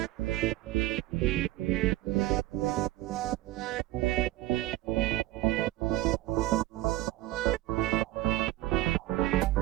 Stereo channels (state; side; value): quieter; left; 16.5 dB